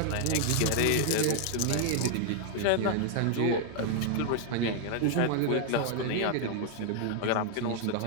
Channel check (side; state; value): both; different; correlation 0.00